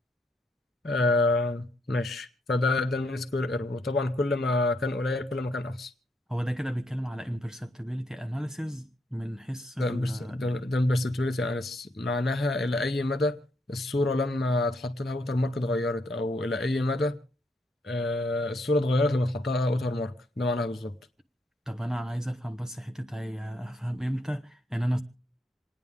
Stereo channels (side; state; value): both; normal; correlation 0.76